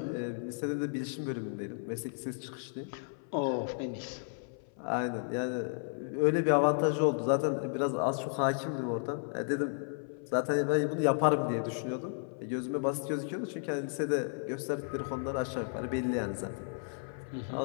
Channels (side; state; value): right; silent; 55 dB below the other